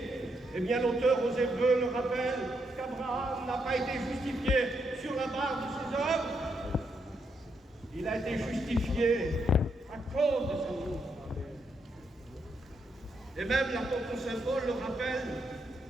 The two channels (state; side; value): normal; both; correlation 0.79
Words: Eh bien, l'auteur aux Hébreux le rappelle qu'Abraham n'a pas été justifié sur la base de ses œuvres. Il a été justifié à cause de sa foi. Et même l'apôtre Saint Paul le rappelle